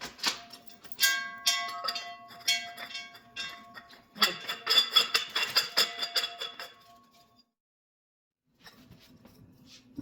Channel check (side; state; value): both; identical; correlation 1.00